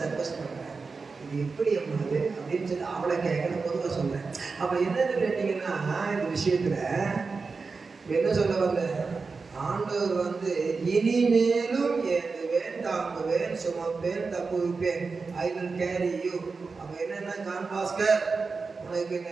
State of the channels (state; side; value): quieter; left; 4.5 dB